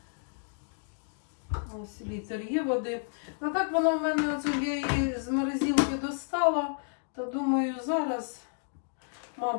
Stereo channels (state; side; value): silent; right; digital silence